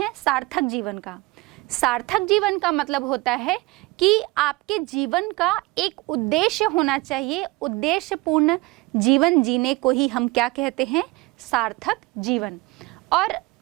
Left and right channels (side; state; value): left; quieter; 22.8 dB